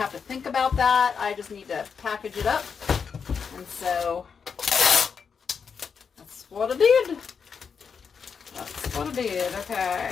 to think about that. I just need to package it up, and so that's what I did. That's what I did.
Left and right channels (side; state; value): right; quieter; 6.2 dB